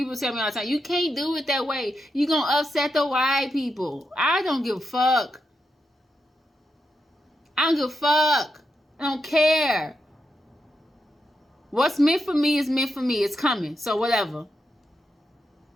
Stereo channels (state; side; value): normal; both; correlation 0.86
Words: tell me all the time, you can't do it that way. You're going to upset the white people. I don't give a fuck. I don't give a fuck. I don't care. What's meant for me is meant for me. It's coming. So whatever.